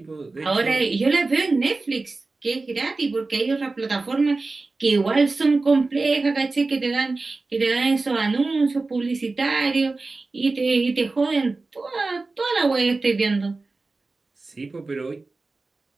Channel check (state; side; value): quieter; left; 3.6 dB